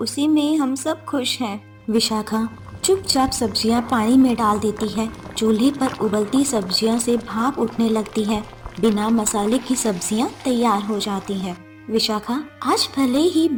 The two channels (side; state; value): both; identical; correlation 1.00